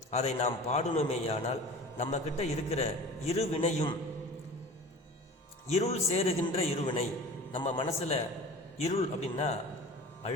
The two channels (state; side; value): normal; both; correlation 0.39